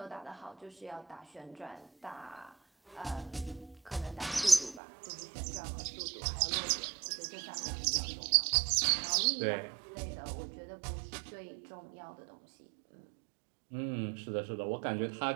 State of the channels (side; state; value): left; drops out; at 4.8 s